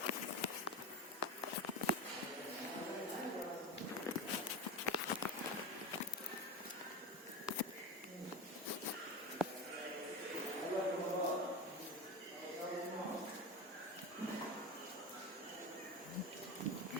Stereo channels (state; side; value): normal; both; correlation 0.23